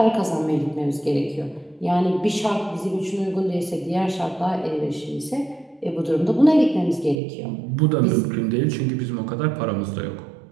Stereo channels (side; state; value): left; drops out; at 7.2 s